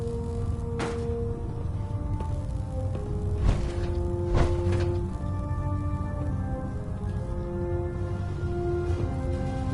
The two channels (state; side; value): identical; both; correlation 1.00